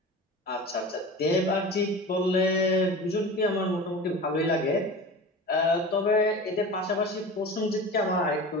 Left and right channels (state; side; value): normal; both; correlation 0.34